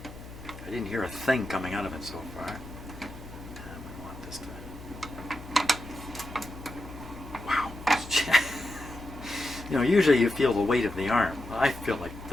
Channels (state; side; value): noise; left; hum, 14 dB below the sound